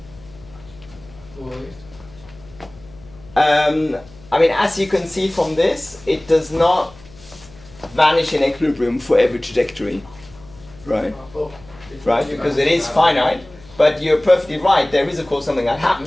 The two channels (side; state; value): left; noise; hum, 23 dB below the sound